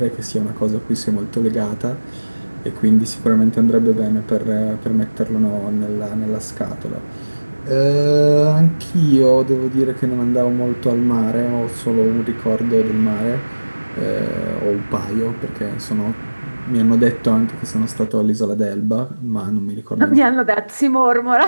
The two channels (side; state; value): both; inverted; correlation -1.00